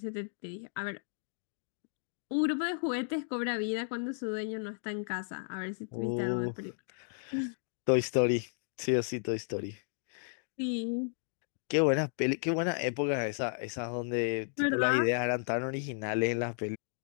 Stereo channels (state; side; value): silent; right; digital silence